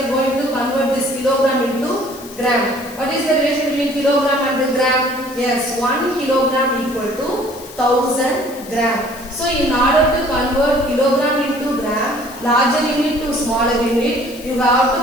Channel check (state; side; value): noise; left; hiss, 17 dB below the sound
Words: going to convert this kilogram into gram. What is the relation between kilogram and the gram? Yes, 1 kilogram equal to 1000 gram. So in order to convert kilogram into gram, larger unit to smaller unit, you have